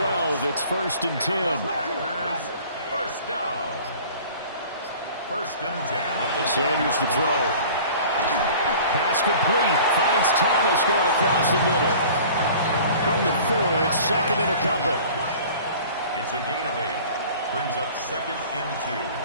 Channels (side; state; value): both; inverted; correlation -0.45